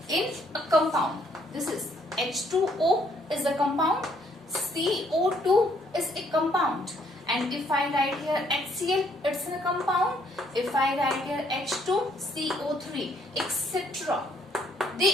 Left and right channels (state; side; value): normal; both; correlation 0.67